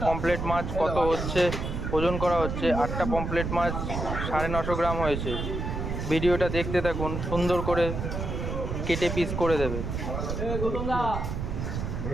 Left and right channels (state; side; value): noise; right; rumble, 3 dB below the sound